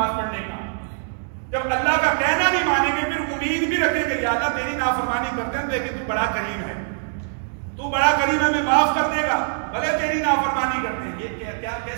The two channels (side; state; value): left; silent; digital silence